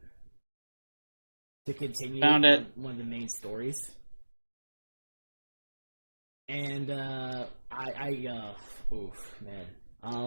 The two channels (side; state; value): both; inverted; correlation -1.00